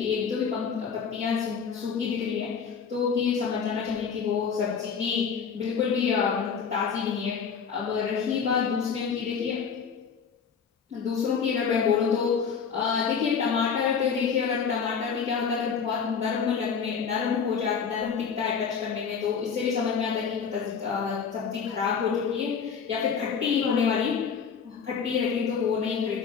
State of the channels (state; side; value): quieter; right; 6.4 dB